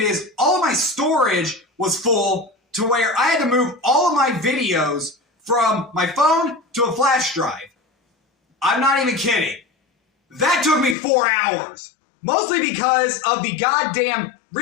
is all of my storage was full to where I had to move all of my videos from my phone to a flash drive. I'm not even kidding. That took me 4 hours. Mostly because of the goddamn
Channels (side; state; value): right; drops out; at 11.0 s